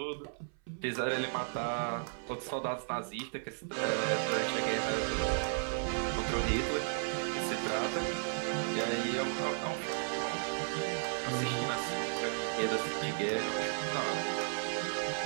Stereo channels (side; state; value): left; silent; 55 dB below the other